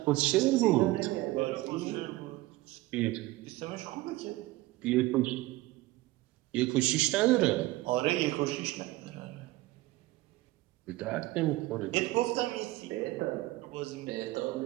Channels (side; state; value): left; quieter; 18.7 dB